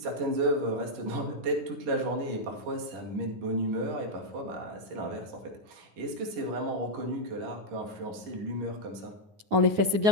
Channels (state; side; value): late; left; 9.7 ms